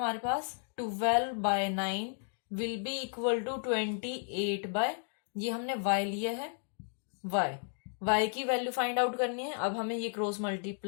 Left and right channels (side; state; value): right; silent; 55 dB below the other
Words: पास? 12/9 will be equal to 28/, ये हमने y लिया है, y की वैल्यू फाइंड आउट करनी है। अब हमें ये क्रॉस